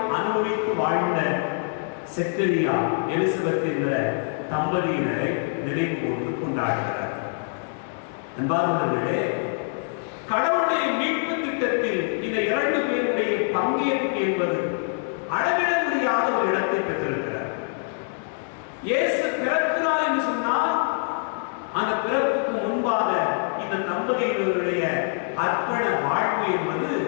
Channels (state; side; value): silent; right; 59 dB below the other